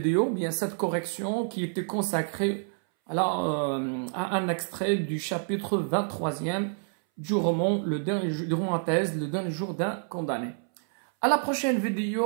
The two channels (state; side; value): silent; left; 59 dB below the other